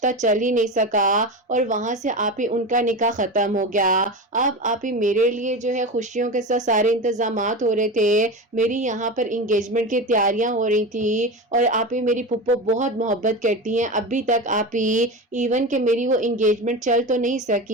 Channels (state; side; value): normal; both; correlation 0.24